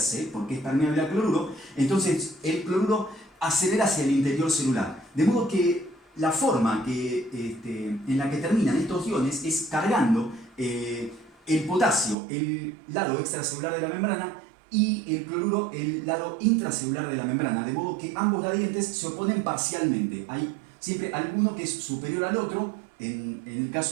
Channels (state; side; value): drops out; left; at 12.2 s